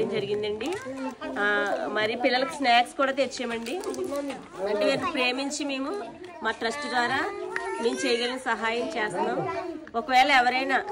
జరిగిందండి. మరి పిల్లలకు స్నాక్స్ కూడా తెచ్చామండి. అంటే వీరిని ప్రేమించి మేము మా ట్రస్ట్ ద్వారా మేము చేయగలిగిన సహాయం చేస్తున్నాం. ఒకవేళ ఎవరైనా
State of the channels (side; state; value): both; identical; correlation 1.00